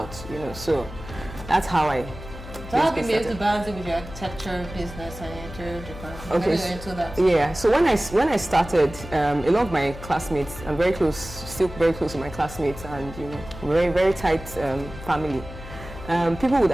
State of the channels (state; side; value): noise; left; hum, 13 dB below the sound